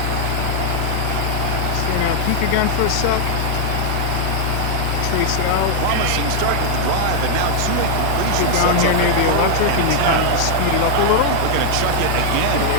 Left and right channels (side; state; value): both; different; correlation 0.00